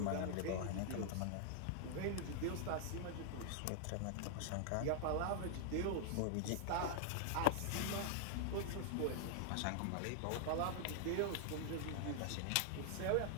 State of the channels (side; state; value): both; different; correlation 0.00